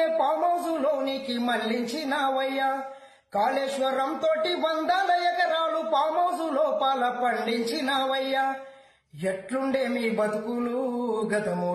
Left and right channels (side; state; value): both; identical; correlation 1.00